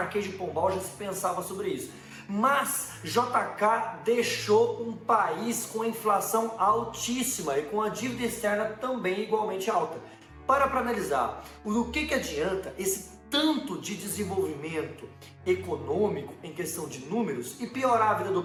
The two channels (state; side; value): identical; both; correlation 1.00